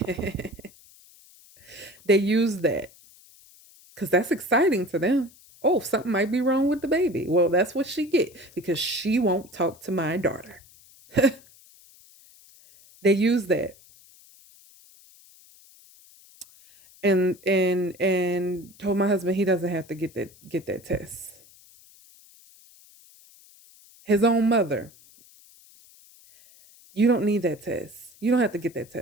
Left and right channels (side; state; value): left; noise; hiss, 25 dB below the sound